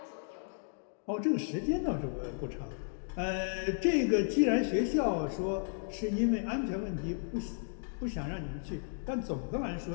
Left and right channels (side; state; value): right; silent; digital silence